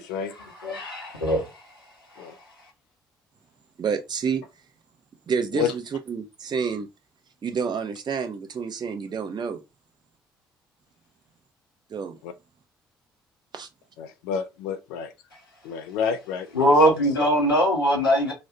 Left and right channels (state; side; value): normal; both; correlation 0.47